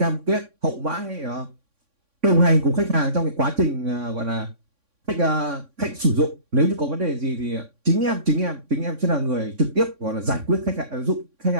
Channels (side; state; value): left; late; 3.6 ms